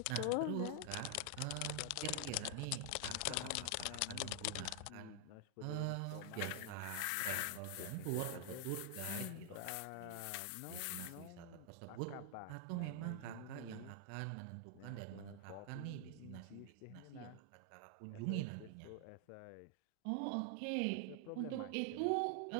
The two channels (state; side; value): different; both; correlation 0.00